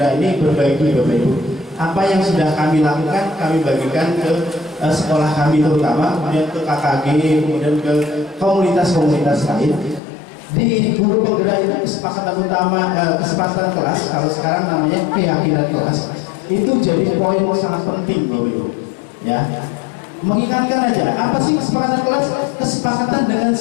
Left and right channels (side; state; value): right; drops out; at 10.0 s